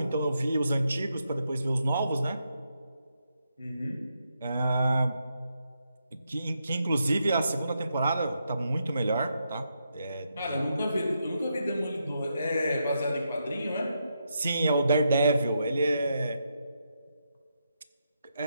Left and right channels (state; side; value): inverted; both; correlation -0.82